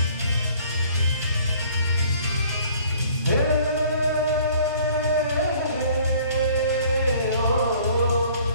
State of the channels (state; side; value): inverted; both; correlation -0.55